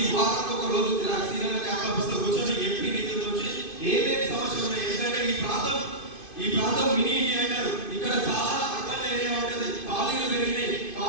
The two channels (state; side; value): late; right; 2.5 ms